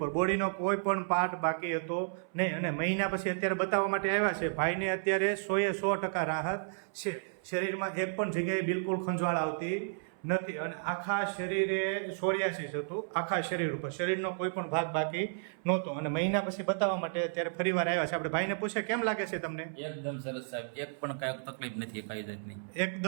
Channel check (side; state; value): left; silent; 56 dB below the other